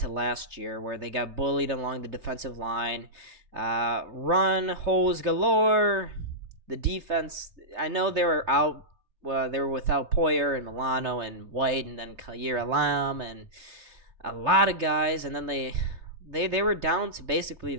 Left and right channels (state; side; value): late; left; 3.4 ms